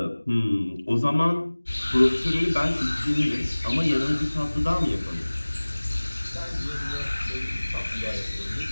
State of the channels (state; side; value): inverted; both; correlation -1.00